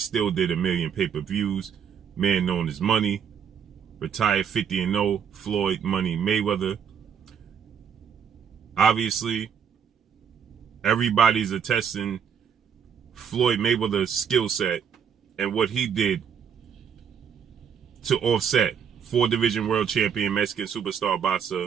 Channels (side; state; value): left; quieter; 7.5 dB